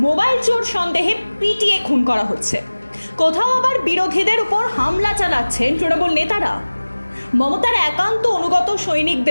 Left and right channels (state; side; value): inverted; both; correlation -1.00